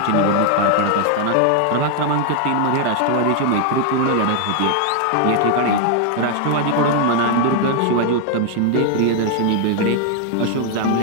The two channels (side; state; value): both; different; correlation 0.00